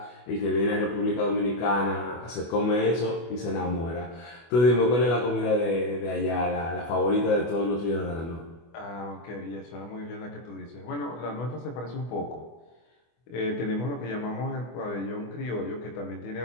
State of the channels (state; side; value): late; right; 24 ms